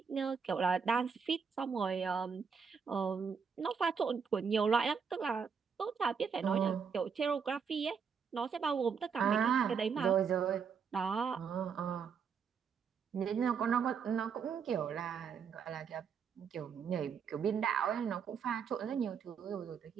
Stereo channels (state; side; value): quieter; left; 6.4 dB